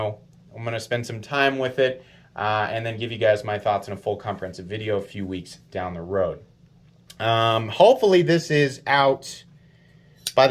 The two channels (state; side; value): identical; both; correlation 1.00